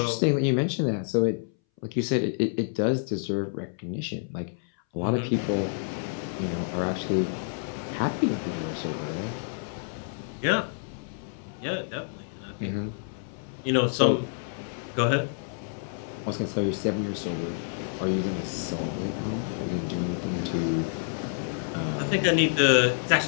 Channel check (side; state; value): right; silent; 59 dB below the other